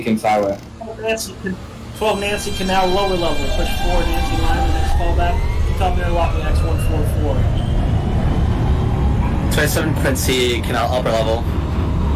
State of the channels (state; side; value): identical; both; correlation 1.00